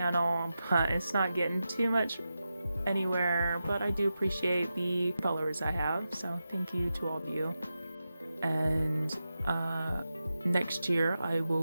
but it's not getting too much anywhere, but I do appreciate the followers I have, so thank you to all of you. And next year I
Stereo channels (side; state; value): both; inverted; correlation -0.91